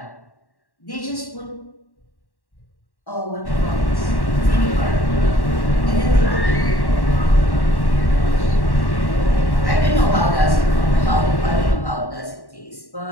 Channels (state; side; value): late; right; 1.1 ms